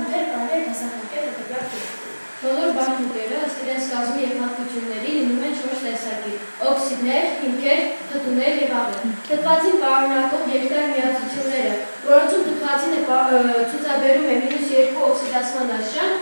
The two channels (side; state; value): both; inverted; correlation -1.00